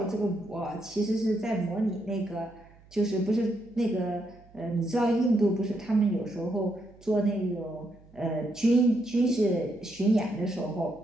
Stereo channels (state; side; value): noise; right; hum, 26 dB below the sound